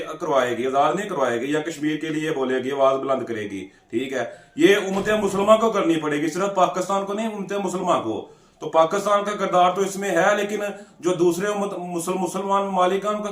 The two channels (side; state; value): both; identical; correlation 1.00